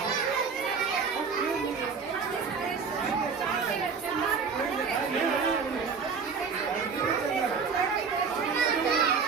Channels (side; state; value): left; quieter; 5.5 dB